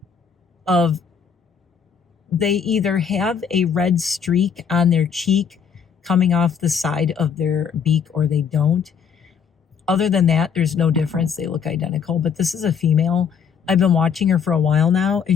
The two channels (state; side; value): quieter; right; 6.9 dB